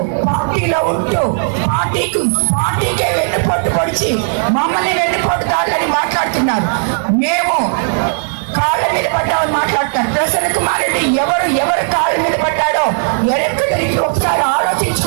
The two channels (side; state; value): left; silent; digital silence